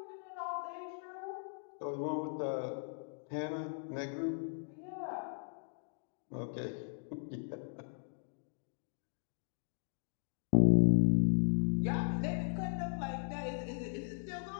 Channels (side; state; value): right; silent; digital silence